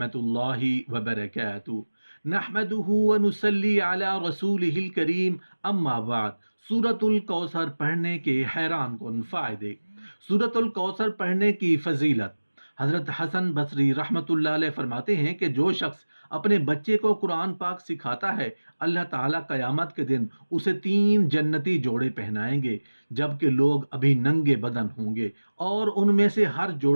वबरकातुहू। नहमदुहु व नुसल्ली अला रसूलिहिल करीम। अम्मा बाद। सूरतुल कौसर पढ़ने के हैरान कुन फ़ायदे। सूरतुल कौसर पढ़ने की फजीलत। हज़रत हसन बसरी रहमतुल्लाह अलैह फरमाते हैं कि जो शख्स अपने बच्चे को कुरान पाक सिखाता है, अल्लाह ताला क़यामत के दिन उसे 3 जन्नती जोड़े पहनाएंगे, जबकि लोग अभी नंगे बदन होंगे, और उनमें से हर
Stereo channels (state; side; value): inverted; both; correlation -1.00